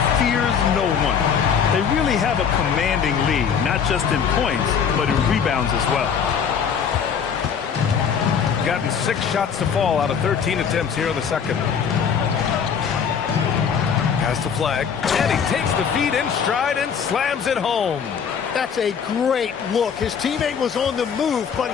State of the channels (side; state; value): right; quieter; 7.1 dB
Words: fears no one. They really have a commanding lead, not just in points, but in rebounds as well. Gotten 6 shots to fall out of 13 attempts here in the second. Has to flag. And he takes the feed in stride and slams it home. That's a great look. His teammate was on the move, but